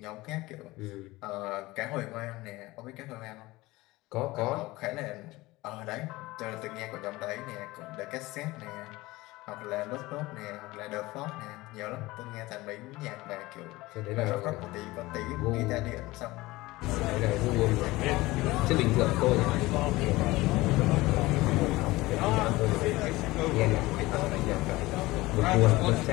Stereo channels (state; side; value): quieter; right; 19.8 dB